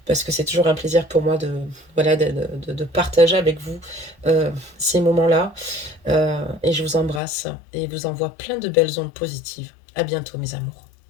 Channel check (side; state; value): right; drops out; at 7.2 s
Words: parce que c'est toujours un plaisir pour moi voilà, de partager avec vous ces moments-là. Et je vous embrasse et vous envoie plein de belles ondes positives. À bientôt, mes amours.